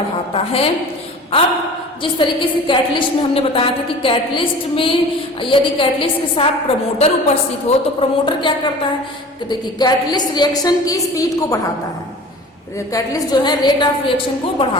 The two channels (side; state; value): both; normal; correlation 0.41